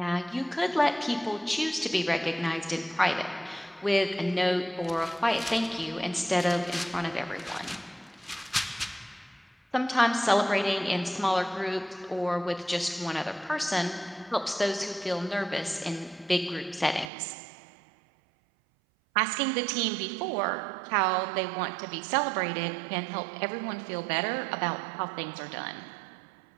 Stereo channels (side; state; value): left; drops out; at 17.1 s